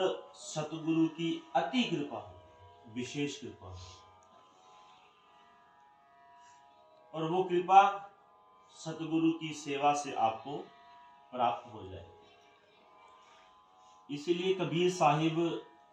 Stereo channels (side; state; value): both; identical; correlation 1.00